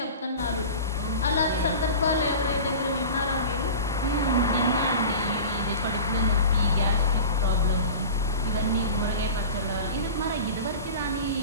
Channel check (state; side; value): inverted; both; correlation -0.34